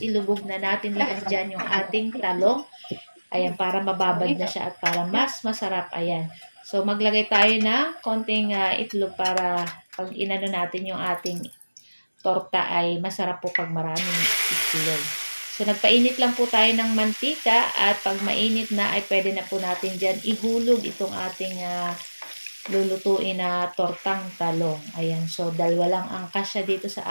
ilubog na natin lahat dyan yung ating talong. Ayan, para mababad na siya at para mas masarap. Ayan. So, maglagay tayo ng konting itlog para pag inano natin yung ating torta ay masarap po pag maraming itlog. So, nagpainit lang po tayo ng mantika at pag mainit na ay pwede na po natin dyan ihulog itong ating lulutuin na tortang talong. Ayan, so dalawa lang ang kasya dito sa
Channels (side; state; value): both; inverted; correlation -1.00